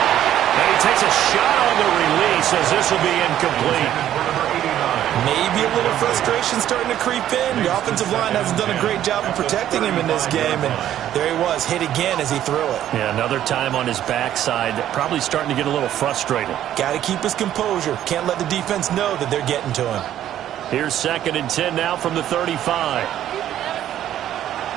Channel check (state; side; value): quieter; left; 11.6 dB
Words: he takes a shot on the release as this will be incomplete. Maybe a little frustration starting to creep in. The offensive line hasn't done a great job of protecting him in this game, and there he was, hit again as he threw it. Yeah, another time on his backside, probably starting to get a little frustrated. Got to keep his composure. Can't let the defense know that they're getting to him. Here's 2nd and 10 now from the 35.